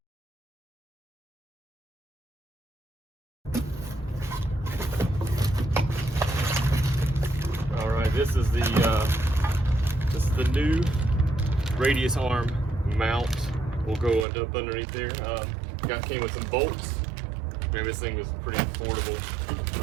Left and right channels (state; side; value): drops out; left; at 14.2 s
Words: All right, this is the new radius arm mount. We'll go up underneath there. Came with some bolts. Man, this thing was pretty affordable.